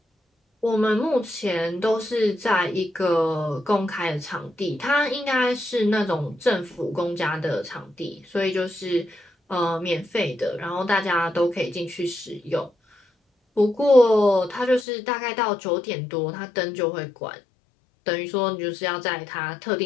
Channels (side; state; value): right; drops out; at 14.9 s